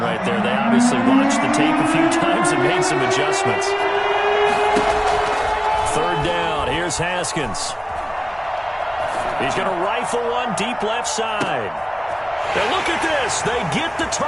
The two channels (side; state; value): both; identical; correlation 1.00